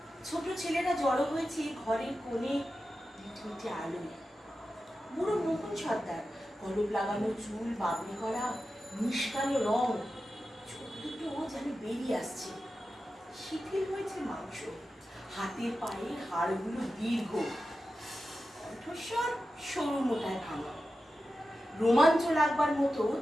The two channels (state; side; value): normal; both; correlation 0.92